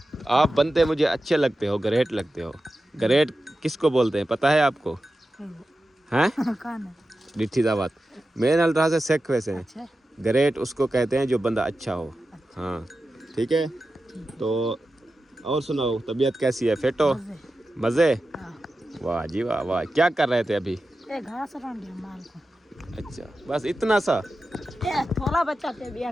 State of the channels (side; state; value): both; normal; correlation 0.92